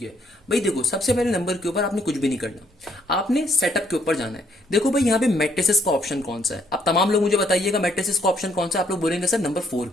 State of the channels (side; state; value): both; normal; correlation 0.68